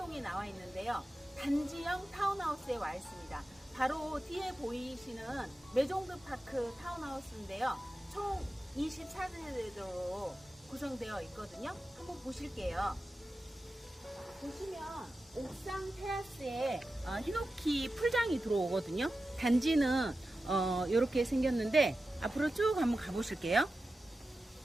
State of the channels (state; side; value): normal; both; correlation 0.93